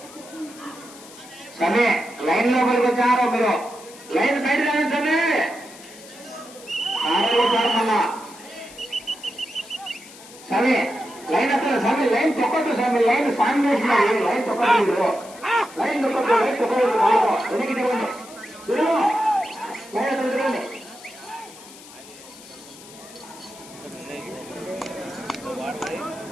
సమయ లైన్ లోపలికి వచ్చారో మీరు, లైన్ బయట రావచ్చండి. సమయ లైన్ అక్కడ సమయ లైన్ తొక్కట్టు, సమయ లైన్ సాంగ్ చేసినారు. లైన్ తొక్కట్టు, లైన్ తొక్కట్టు, లైన్ తొక్కట్టు, వెనక్కి తిరగండి.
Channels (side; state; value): left; noise; hiss, 19 dB below the sound